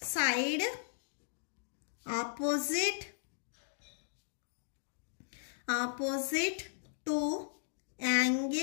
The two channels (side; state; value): right; silent; digital silence